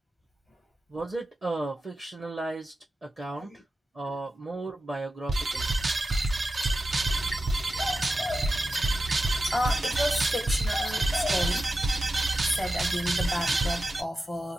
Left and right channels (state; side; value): normal; both; correlation 0.92